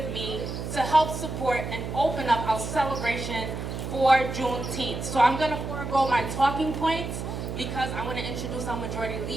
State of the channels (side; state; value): right; noise; hum, 5 dB below the sound